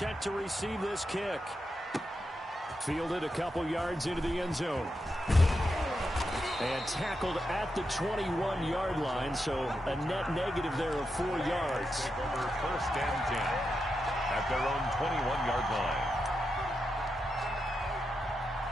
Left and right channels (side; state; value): both; normal; correlation 0.86